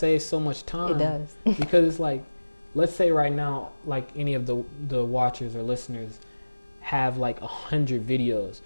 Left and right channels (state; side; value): inverted; both; correlation -1.00